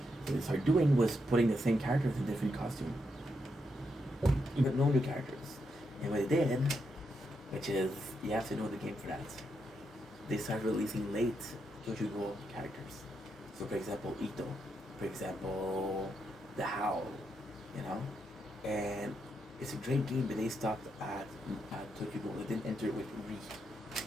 What they started doing was putting the same characters in different costumes, but no new characters. And what they did, which is you have to know the game for that, they started releasing late Tokyo Ghoul characters. So for example, Ito, for example, the Howl, you know, and it's a great game, but they stopped at Tokyo Ghoul. They didn't enter it with Re.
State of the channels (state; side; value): normal; both; correlation 0.81